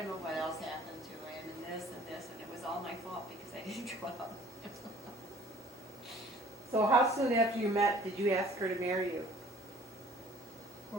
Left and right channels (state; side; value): normal; both; correlation 0.52